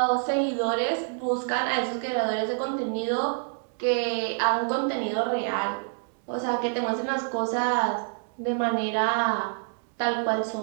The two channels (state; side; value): silent; left; digital silence